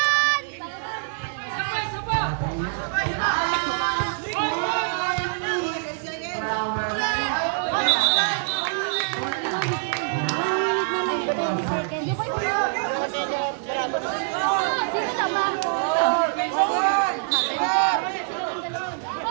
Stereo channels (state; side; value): silent; left; 62 dB below the other